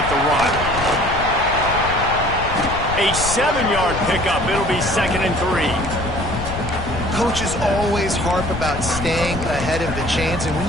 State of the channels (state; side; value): noise; left; rumble, 7 dB below the sound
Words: the rock. A 7-yard pickup. It'll be 2nd and 3. Coaches always harp about staying ahead of the chains, and when